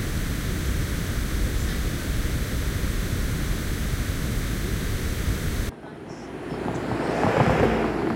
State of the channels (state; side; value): identical; both; correlation 1.00